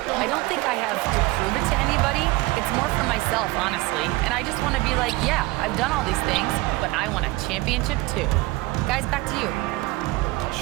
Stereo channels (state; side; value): quieter; left; 21.2 dB